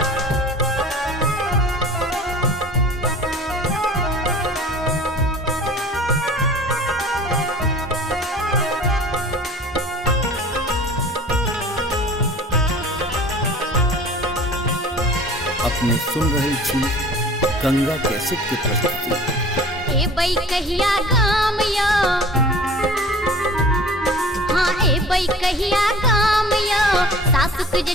अपने सुन रही छी गंगा कैसेट की प्रस्तुति। ए बई कहिया गाम यो, हाँ ए बई कहिया गाम यो, सासुक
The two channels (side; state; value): both; normal; correlation 0.44